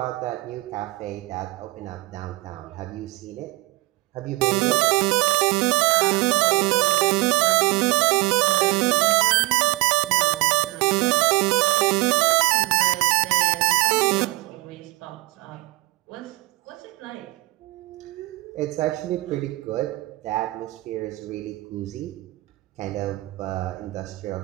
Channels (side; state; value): left; quieter; 20.6 dB